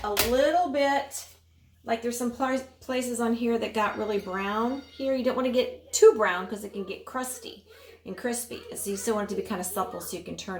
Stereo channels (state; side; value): identical; both; correlation 1.00